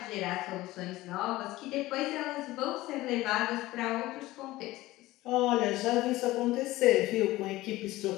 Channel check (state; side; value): quieter; right; 17.8 dB